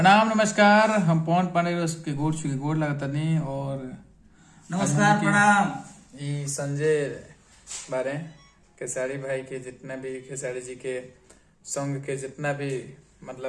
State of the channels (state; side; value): identical; both; correlation 1.00